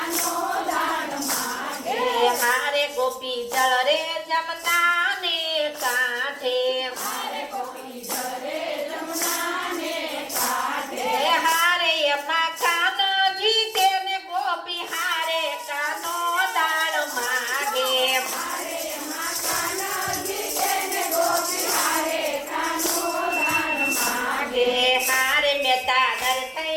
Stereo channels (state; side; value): identical; both; correlation 1.00